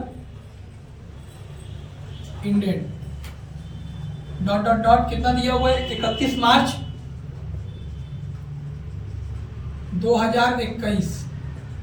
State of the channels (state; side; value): identical; both; correlation 1.00